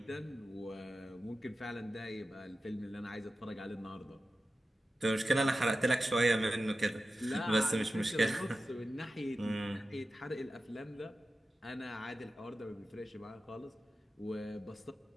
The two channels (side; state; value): both; normal; correlation 0.93